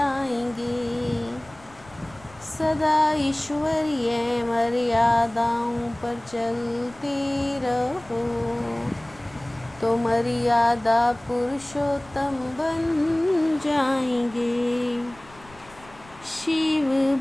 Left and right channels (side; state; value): left; noise; rumble, 24 dB below the sound